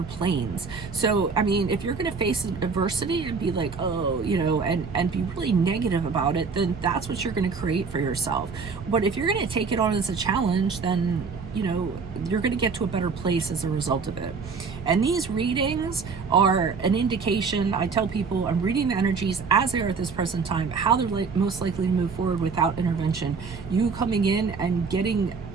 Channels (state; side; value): quieter; left; 5.1 dB